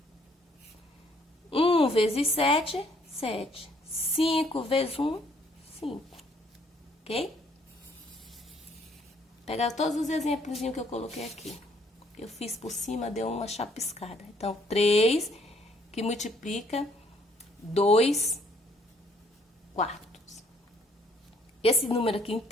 1 vezes 7, 7. 5 vezes 1, 5. Ok? Pegar todos os exemplos que eu coloquei aqui. Eu fiz por cima, deu uma chapiscada. Então, 3, que que multiplica 2 quartos. Esse número aqui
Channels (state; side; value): normal; both; correlation 0.65